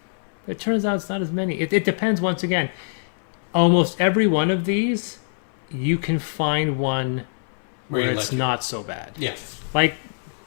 It turns out it's not as many. It depends, once again. Almost every one of these, you can find one where it's like not so bad. Yeah. Like,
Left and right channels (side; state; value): right; silent; 58 dB below the other